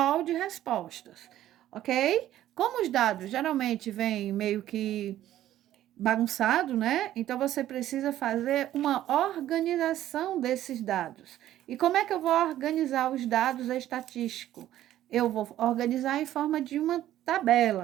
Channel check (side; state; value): left; quieter; 13.0 dB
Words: de respostas, ok? Como os dados geralmente vêm meio que bagunçado, né? Então você precisa fazer uma organização desses dados. E como é que eu vou organizar os dados estatísticos? Eu vou organizar em forma de uma